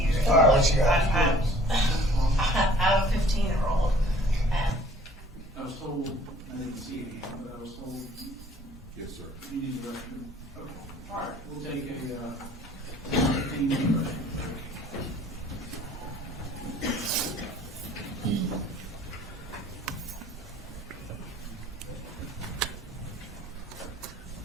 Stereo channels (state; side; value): normal; both; correlation 0.54